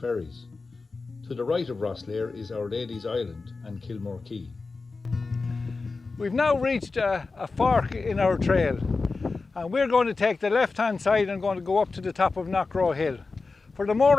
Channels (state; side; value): quieter; right; 4.0 dB